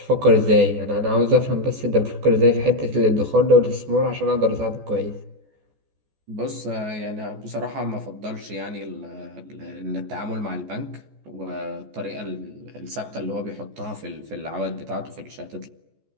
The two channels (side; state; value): left; late; 14 ms